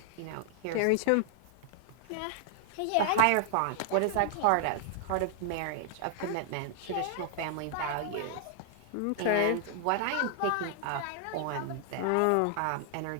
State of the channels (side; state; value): both; different; correlation -0.01